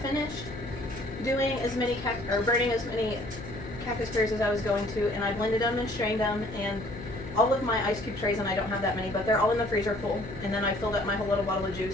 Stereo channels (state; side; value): noise; left; hum, 12 dB below the sound